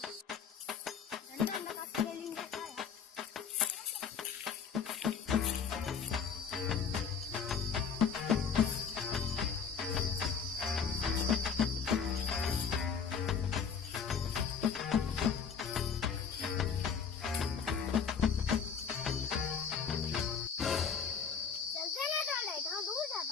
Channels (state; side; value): quieter; right; 6.6 dB